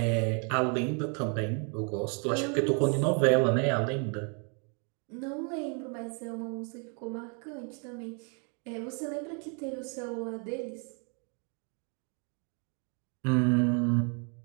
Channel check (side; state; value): left; quieter; 38.2 dB